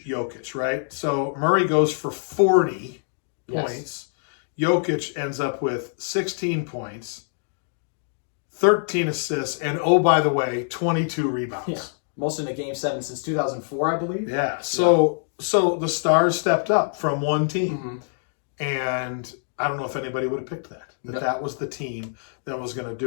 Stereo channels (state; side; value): silent; right; digital silence